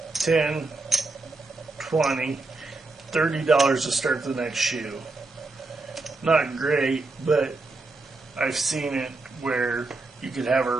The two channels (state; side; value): quieter; left; 3.4 dB